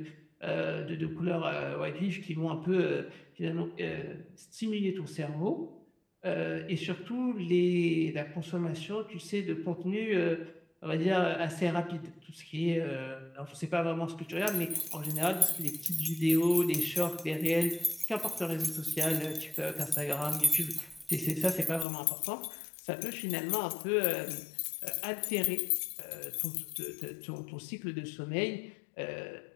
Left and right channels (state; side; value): drops out; right; at 21.9 s